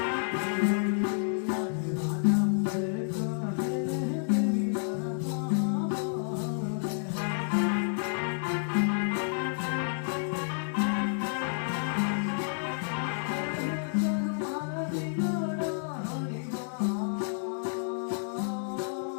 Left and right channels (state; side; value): silent; right; digital silence